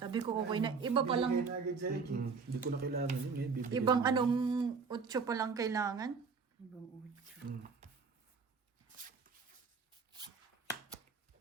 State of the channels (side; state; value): left; quieter; 5.2 dB